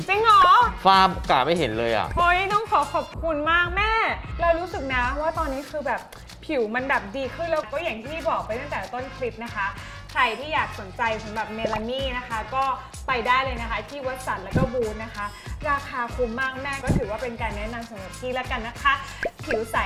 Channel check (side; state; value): both; identical; correlation 1.00